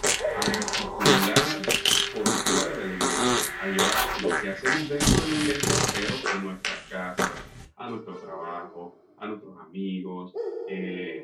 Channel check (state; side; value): identical; both; correlation 1.00